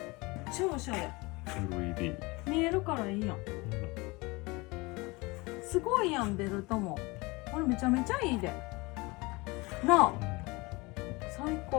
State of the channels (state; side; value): quieter; right; 24.5 dB